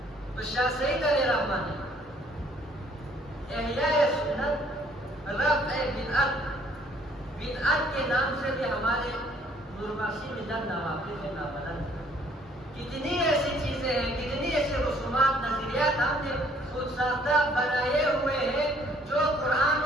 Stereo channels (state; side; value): normal; both; correlation 0.61